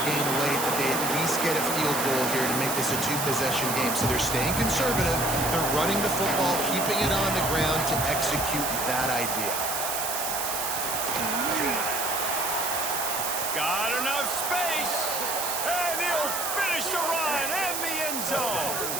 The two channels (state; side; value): noise; right; hiss, 2 dB below the sound